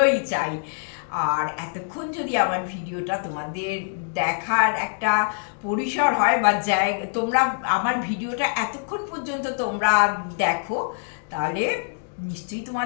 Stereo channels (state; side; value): silent; right; digital silence